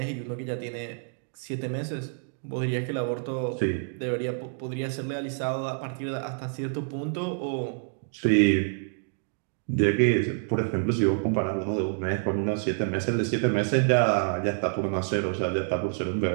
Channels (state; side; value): silent; left; 60 dB below the other